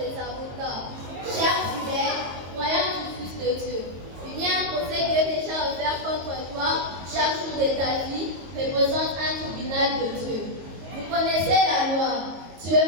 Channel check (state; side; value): late; left; 22 ms